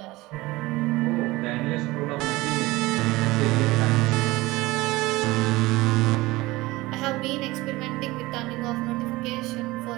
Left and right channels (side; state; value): left; quieter; 20.2 dB